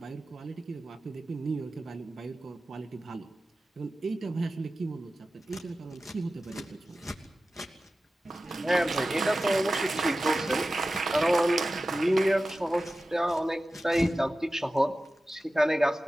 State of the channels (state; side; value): normal; both; correlation 0.95